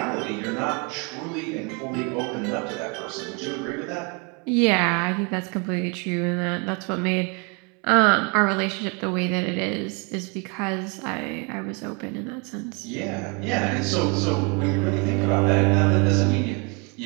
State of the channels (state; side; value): quieter; left; 32.2 dB